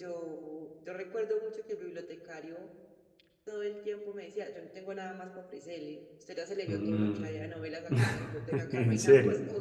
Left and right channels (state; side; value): identical; both; correlation 1.00